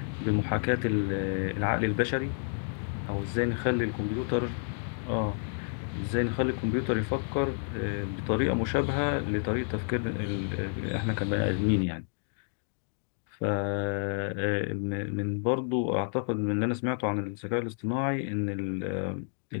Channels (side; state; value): right; silent; 58 dB below the other